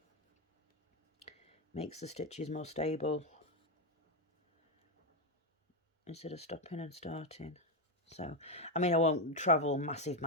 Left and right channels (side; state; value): both; normal; correlation 0.06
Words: Makes the stitches more stable instead of stopping and starting. So, I mean, I won't travel massive